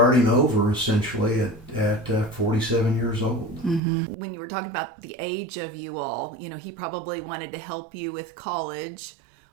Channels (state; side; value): drops out; left; at 3.8 s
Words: over essentially at 47 years old. Mm-hmm. When you were talking about the age of you all, he probably wanted to help you with college